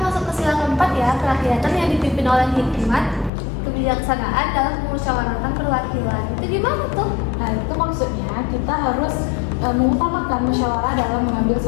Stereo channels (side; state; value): right; drops out; at 3.3 s